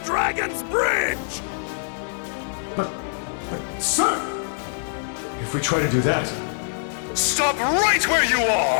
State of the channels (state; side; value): silent; right; digital silence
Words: Dragon's Bridge! But, sir! If we try to do that... Stop right where you